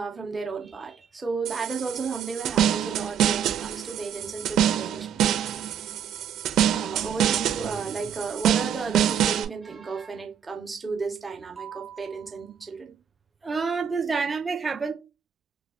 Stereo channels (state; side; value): quieter; left; 8.1 dB